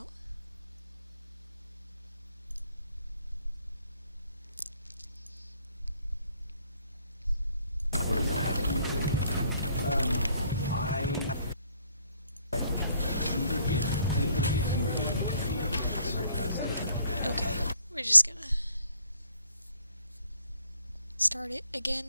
Okay, we're just gonna start it again,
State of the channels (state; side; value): inverted; both; correlation -0.65